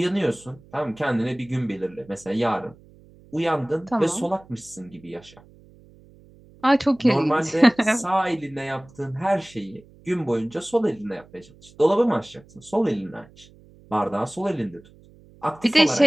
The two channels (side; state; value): right; noise; hum, 25 dB below the sound